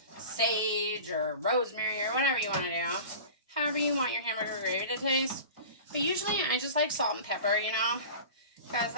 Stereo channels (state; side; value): inverted; both; correlation -0.37